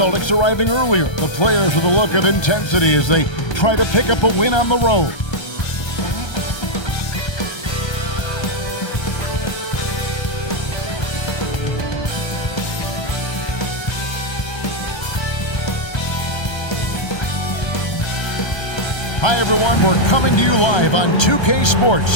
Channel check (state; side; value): late; right; 1.3 ms